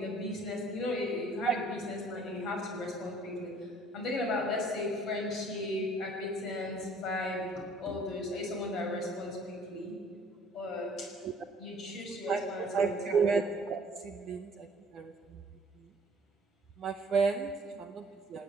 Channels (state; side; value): normal; both; correlation 0.55